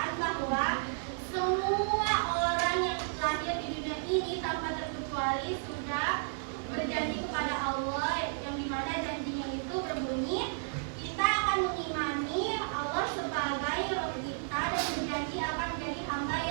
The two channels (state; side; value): silent; left; digital silence